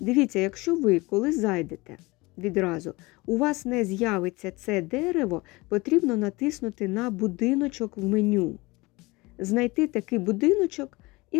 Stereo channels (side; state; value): right; quieter; 23.1 dB